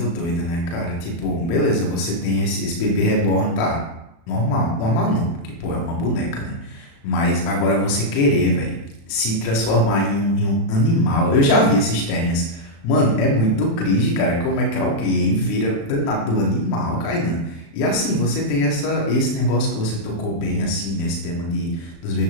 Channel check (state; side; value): late; right; 36 ms